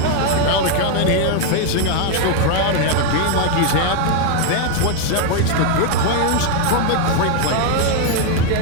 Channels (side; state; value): both; different; correlation 0.01